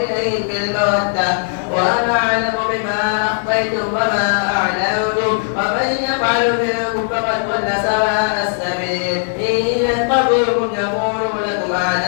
إليهم بالمودة وأنا أعلم بما أخفيتم وما أعلنتم ومن يفعل منكم فقد ضل سواء السبيل إن يتقوكم يكونوا لكم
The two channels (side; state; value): right; silent; 58 dB below the other